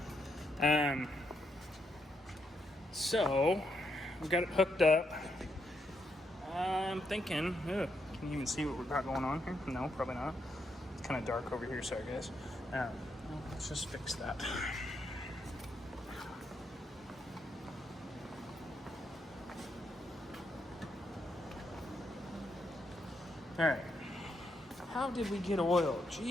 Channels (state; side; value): normal; both; correlation 0.79